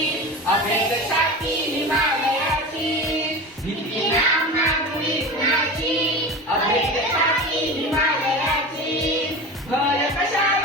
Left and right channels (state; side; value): normal; both; correlation 0.30